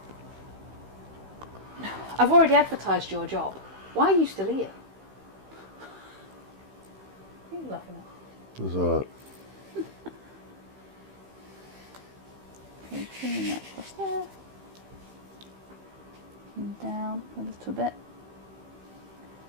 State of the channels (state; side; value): late; left; 15 ms